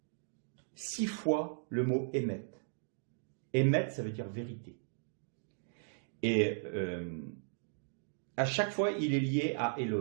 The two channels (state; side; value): silent; left; digital silence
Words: 6 fois le mot « émet ». Émet, ça veut dire vérité. Et à chaque fois, il est lié à